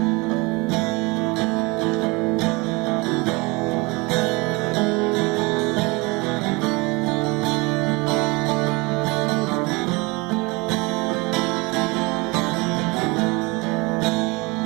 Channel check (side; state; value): left; quieter; 26.1 dB